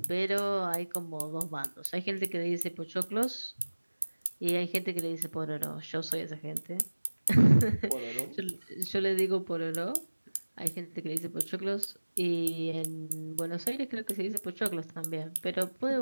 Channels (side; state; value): both; inverted; correlation -1.00